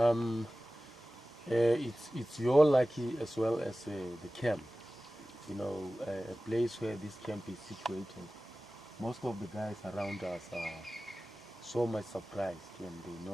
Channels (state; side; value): normal; both; correlation 0.96